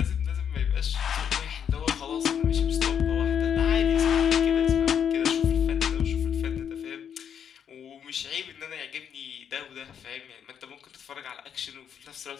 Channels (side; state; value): right; quieter; 8.2 dB